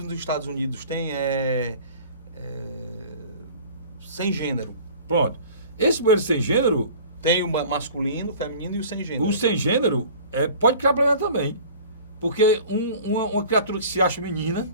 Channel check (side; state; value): both; inverted; correlation -0.44